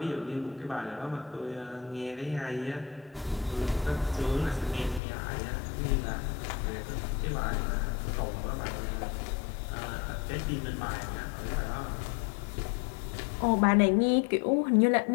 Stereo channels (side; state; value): right; drops out; at 5.0 s